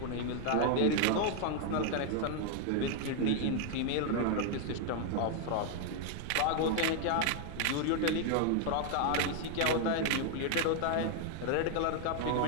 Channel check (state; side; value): different; both; correlation 0.00